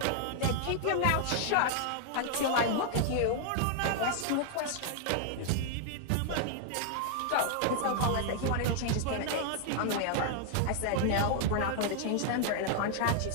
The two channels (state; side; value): different; both; correlation 0.00